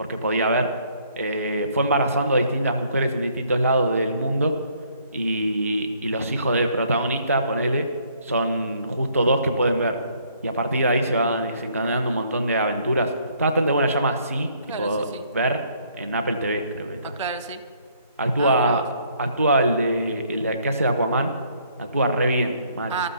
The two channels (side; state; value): both; inverted; correlation -0.65